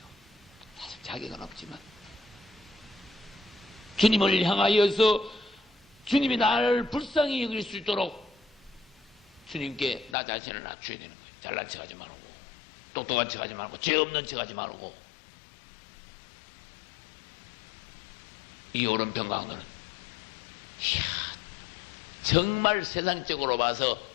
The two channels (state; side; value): drops out; right; at 10.2 s